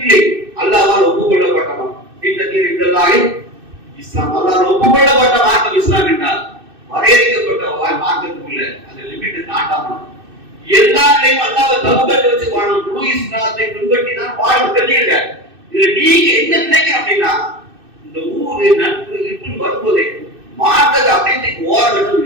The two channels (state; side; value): late; left; 2.6 ms